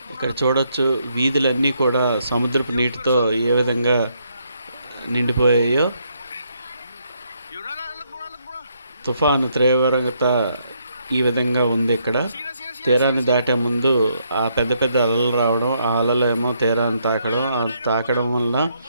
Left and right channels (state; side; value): inverted; both; correlation -0.74